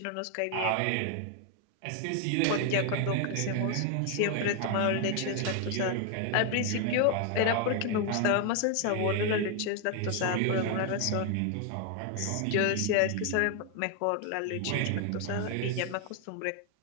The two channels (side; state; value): both; different; correlation 0.00